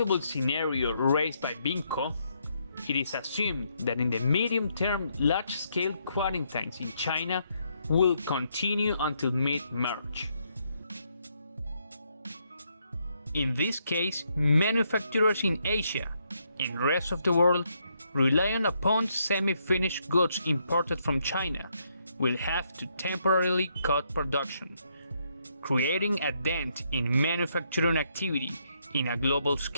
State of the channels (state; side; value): inverted; both; correlation -0.75